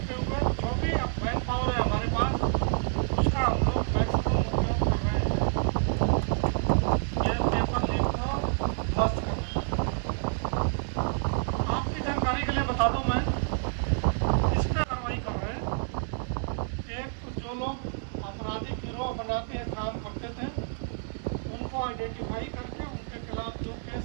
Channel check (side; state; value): left; silent; digital silence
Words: हुए जो भी मैन पावर है हमारे पास, उसका हम लोग मैक्सिमम उपयोग कर रहे हैं। ये पेपर लीक को ध्वस्त कर रहे हैं। आपकी जानकारी के लिए बता दूँ, मैं इस पर कार्रवाई कर रहे हैं। एक तो जो लोग आपराधिक गिरोह बना के काम करते थे, उनको आइडेंटिफाई करके उनके खिलाफ जो केस